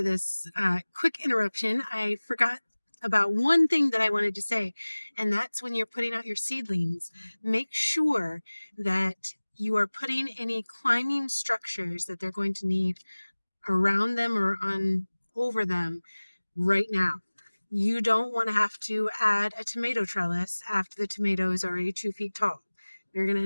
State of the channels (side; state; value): both; inverted; correlation -1.00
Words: this quick interruption. I forgot about one thing that I wanted to say, and that's when you're putting out your seedlings, make sure that you are putting any climbing structures that they're going to need around them or over them right now. You don't want to have to add a tomato trellis after the tomato is already 2 feet tall. You're going to